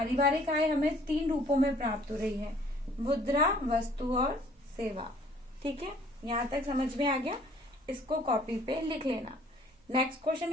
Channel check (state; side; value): normal; both; correlation 0.57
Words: आय हमें 3 रूपों में प्राप्त हो रही है, मुद्रा, वस्तु और सेवा। ठीक है, यहाँ तक समझ में आ गया। इसको कॉपी पे लिख लेना। नेक्स्ट क्वेश्चन